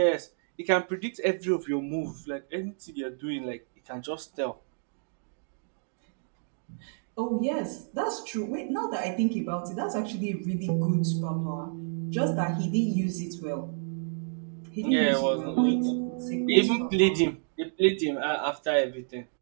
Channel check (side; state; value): left; silent; digital silence